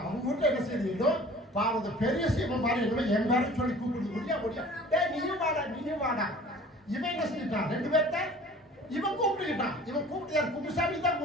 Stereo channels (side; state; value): both; normal; correlation 0.47